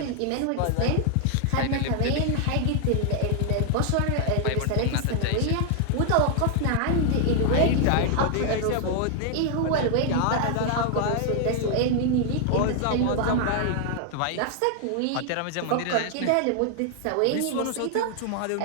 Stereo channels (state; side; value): different; both; correlation 0.00